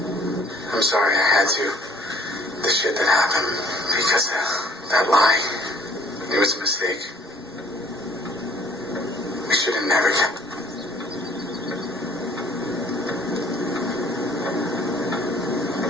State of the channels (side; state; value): both; normal; correlation 0.57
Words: I'm sorry I had to. The shit that happened because of that lie. It was a mistake. We should have never kept...